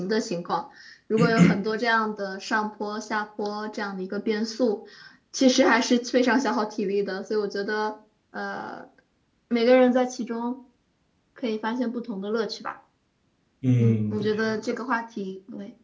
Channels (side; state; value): both; identical; correlation 1.00